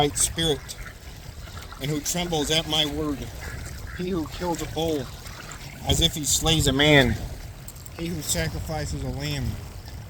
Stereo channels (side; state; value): both; identical; correlation 1.00